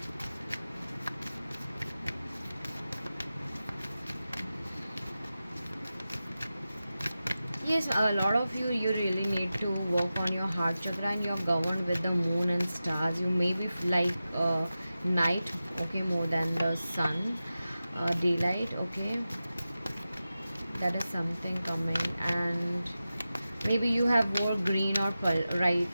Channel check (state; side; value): inverted; both; correlation -0.94